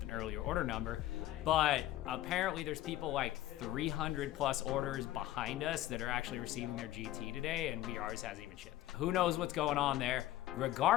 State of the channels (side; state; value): right; quieter; 14.6 dB